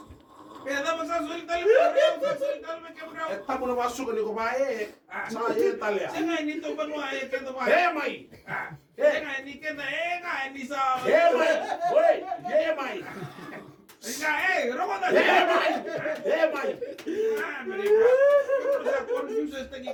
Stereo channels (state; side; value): identical; both; correlation 1.00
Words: Kaya dapat sa sultan may kameraw. Eh, tamo na masuk ni kumae. Sa iyo talya. Siya nga, nito ba mo ay kaya ba? Hemay! Siya nga, hindi ka na, hindi sa... Hemay! Hoy! Hemay! Siya nga, roko na. Hemay! Hemay! Mereka. Pero sa confuses tagi